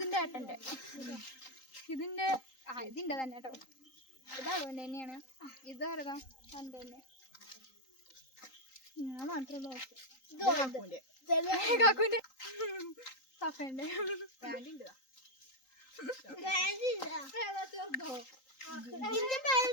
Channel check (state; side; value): late; right; 3.8 ms